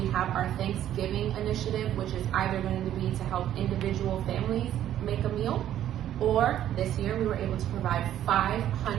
have our Thanksgiving initiative, which is either going to be to help individual families make a meal, or this year we were able to provide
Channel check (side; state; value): left; quieter; 11.5 dB